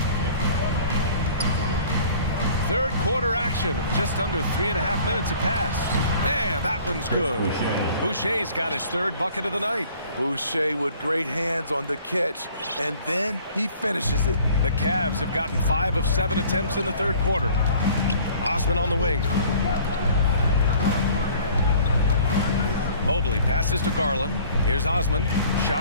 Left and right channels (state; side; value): inverted; both; correlation -0.52